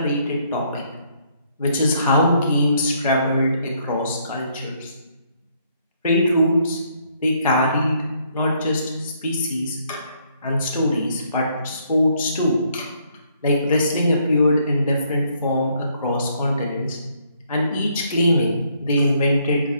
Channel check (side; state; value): both; inverted; correlation -0.69